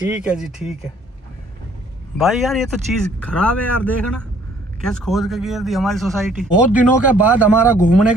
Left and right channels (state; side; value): normal; both; correlation 0.60